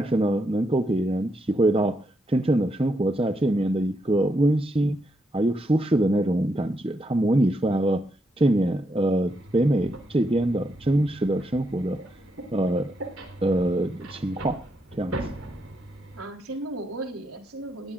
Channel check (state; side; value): normal; both; correlation 0.80